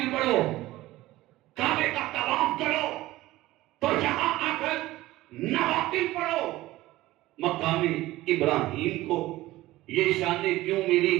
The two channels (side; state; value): left; quieter; 17.2 dB